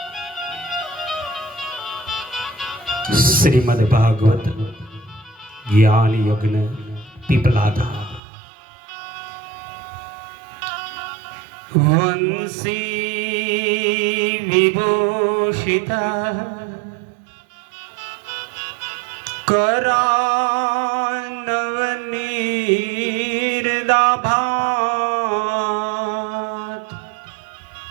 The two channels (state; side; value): drops out; left; at 8.2 s